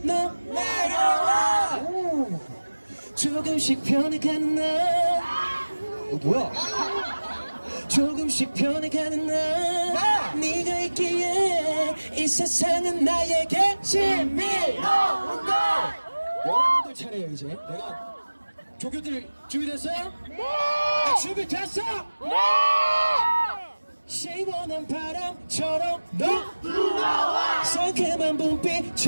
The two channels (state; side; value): inverted; both; correlation -1.00